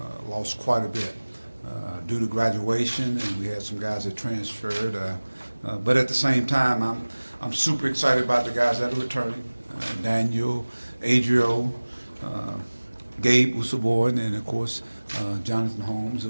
lost quite a bit due to graduation, and we had some guys that transferred. But at the same time, I'm super excited about the guys that are returning: Daniel, Adrio, Gabe Usaborn, and of course Jonathan Holmes,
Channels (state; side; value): inverted; both; correlation -1.00